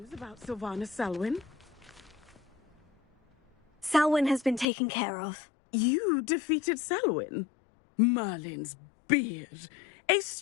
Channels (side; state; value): right; drops out; at 4.7 s